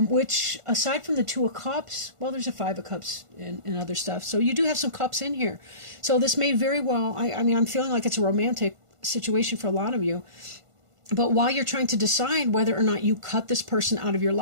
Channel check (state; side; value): late; left; 1.5 ms